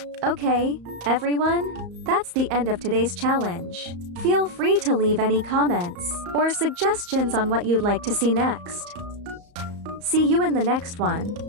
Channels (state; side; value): late; left; 34 ms